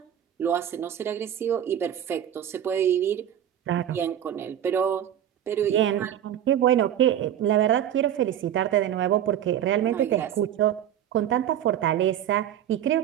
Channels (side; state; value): left; quieter; 10.5 dB